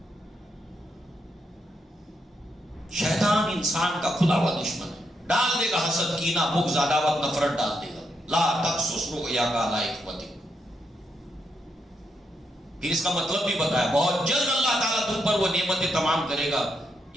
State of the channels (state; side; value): normal; both; correlation 0.80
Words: شیطان انسان کا کھلا ہوا دشمن ہے، ڈال دے گا حسد، کینہ، بغض، عداوت، نفرت ڈال دے گا۔ لا تقصص رؤیاک علی اخوتک، پھر اس کا مطلب بھی بتایا، بہت جلد اللہ تعالیٰ تم پر وہ نعمتیں تمام کرے گا